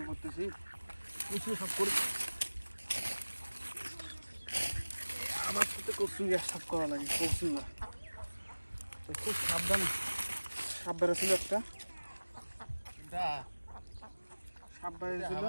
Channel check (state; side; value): inverted; both; correlation -1.00